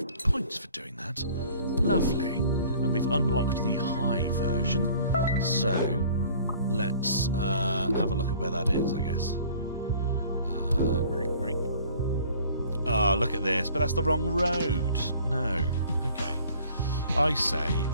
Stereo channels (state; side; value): inverted; both; correlation -0.51